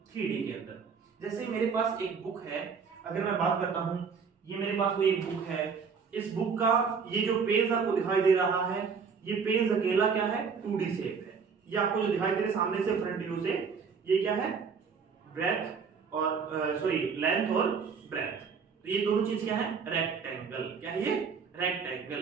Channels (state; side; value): quieter; left; 5.8 dB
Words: 3D के अंदर। जैसे मेरे पास एक बुक है, अगर मैं बात करता हूं, ये मेरे पास कोई एक बुक है, इस बुक का ये जो पेज आपको दिखाई दे रहा है, ये पेज अकेला क्या है, 2D शेप है। ये आपको जो दिखाई दे रहा है सामने से फ्रंट व्यू से, ये क्या है, ब्रेथ और लेंथ और ब्रेथ। तो ये दोनों चीज क्या है, रेक्टेंगल। क्या है ये,